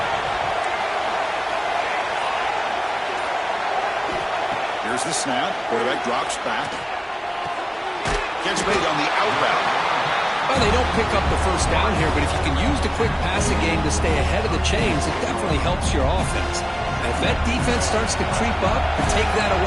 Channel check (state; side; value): identical; both; correlation 1.00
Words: Here's the snap. Quarterback drops back. Catch made on the outbound. Well, they don't pick up the first down here, but if you can use the quick passing game to stay ahead of the chains, it definitely helps your offense. And if that defense starts to creep up and take that